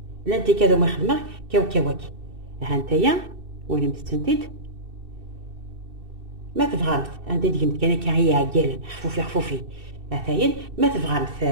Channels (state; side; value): late; left; 2.6 ms